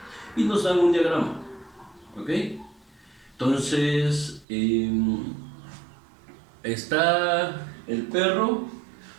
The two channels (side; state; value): left; drops out; at 4.5 s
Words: y nos dan un diagrama. ¿Ok? Entonces, está el perro.